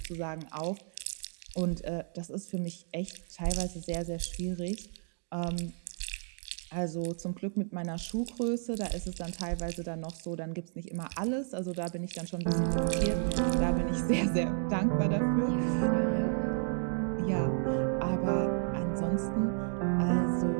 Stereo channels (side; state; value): left; silent; 56 dB below the other